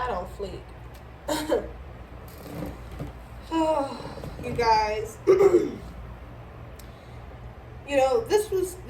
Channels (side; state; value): both; identical; correlation 1.00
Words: on fleek. Oh, you guys. You know, this was